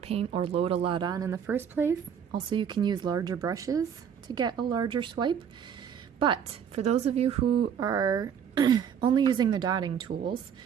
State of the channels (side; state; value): left; quieter; 8.0 dB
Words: or load a lot on in the first place. Also, you can use larger brushes to get a larger swipe. But for those of you who are only using the dotting tools,